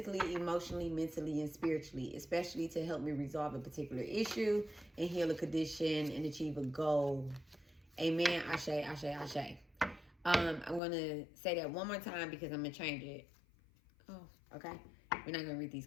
emotionally, mentally, and spiritually, especially to help me resolve a particular issue and heal a condition and achieve a goal. Amen. Ashe, ashe, ashe. I'm going to say that one more time because I'm going to change it. Oh, okay. We're not going to read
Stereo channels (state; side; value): drops out; right; at 10.8 s